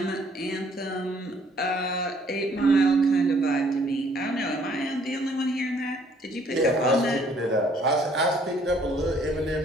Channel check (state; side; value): normal; both; correlation 0.62